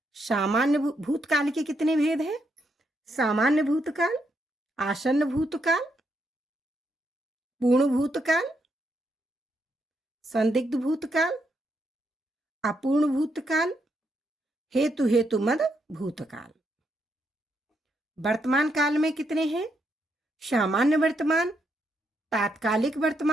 सामान्य भूतकाल के कितने भेद हैं? सामान्य भूतकाल, आसन्न भूतकाल, पूर्ण भूतकाल, संदिग्ध भूतकाल, अपूर्ण भूतकाल, हेतु हेतु मद भूतकाल। वर्तमान काल में कितने हैं? सामान्य वर्तमान, तात्कालिक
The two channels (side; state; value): both; normal; correlation 0.78